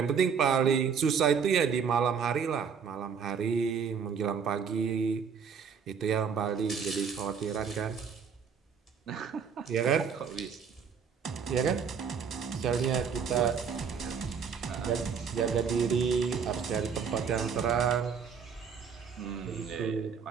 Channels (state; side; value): quieter; left; 6.5 dB